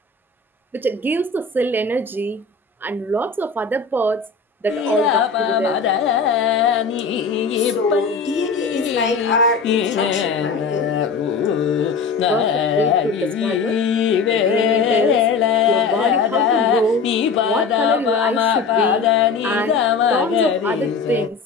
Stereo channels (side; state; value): right; quieter; 4.8 dB